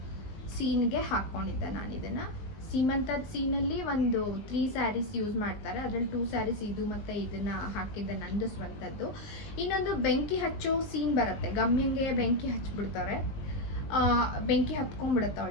ಸೀನ್ಗೆ ಹಾಕ್ಕೊಂಡಿದ್ದೆ ನಾನು ಇದನ್ನು. ಸೀಮಂತದ ಸೀನಲ್ಲಿ ಒಂದು 3 ಸ್ಯಾರೀಸ್ ಯೂಸ್ ಮಾಡ್ತಾರೆ, ಅದರಲ್ಲಿ 2 ಸ್ಯಾರೀಸ್ ಇದು ಮತ್ತು ಇದನ್ನು ಹಾಕಿದ್ದೆ, ನಂದು ಸ್ವಂತದ್ದು. ಇನ್ನೊಂದು ಬೆಂಕಿ ಹಚ್ಚೋ ಸೀನ್ ಬರುತ್ತೆ, ಗಮ್ಯಂಗೆ ಬೆಂಕಿ ಹಚ್ಬಿಡ್ತಾರೆ, ಬೆಂಕಿ ಹತ್ಕೊಂಡ್ಬಿಡುತ್ತೆ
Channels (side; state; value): right; late; 19 ms